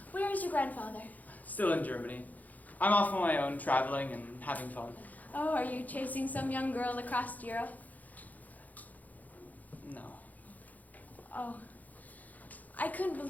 Where is your grandfather? Still in Germany. I'm off on my own, traveling and having fun. Oh, are you chasing some young girl across Europe? No. Oh. I couldn't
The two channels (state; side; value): late; right; 0.080 ms